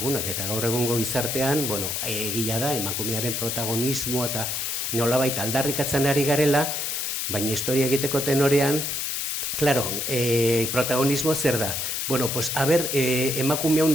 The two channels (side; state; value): left; noise; hiss, 2 dB below the sound